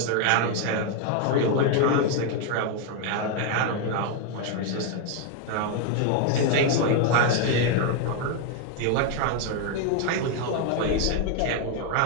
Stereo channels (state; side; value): different; both; correlation 0.01